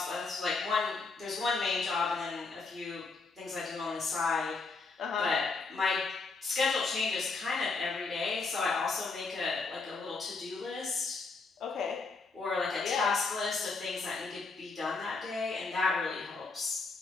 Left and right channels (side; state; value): right; quieter; 4.1 dB